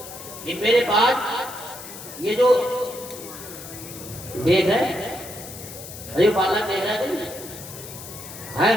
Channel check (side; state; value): left; noise; hiss, 13 dB below the sound